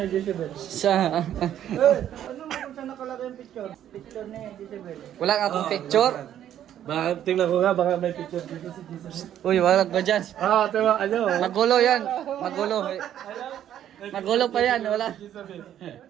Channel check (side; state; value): left; quieter; 10.9 dB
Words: Jezebel. Sa. Ano mo kung saan nakalagay yung picture? Picture ni Jezebel. Wala nga akong picture. Tingnan ko nga, baka may picture dito si Jesus. Uy, wala ba dyan? Tama, ano? Magulo yan. Magulo. Magulo pa yan. Wala.